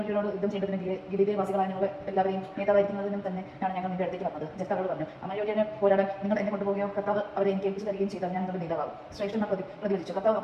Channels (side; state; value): both; identical; correlation 1.00